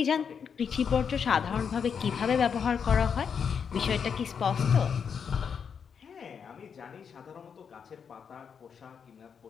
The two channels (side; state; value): right; quieter; 6.8 dB